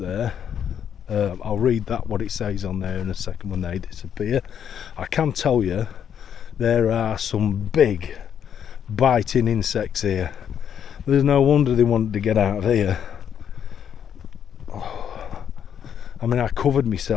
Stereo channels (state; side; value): quieter; right; 8.6 dB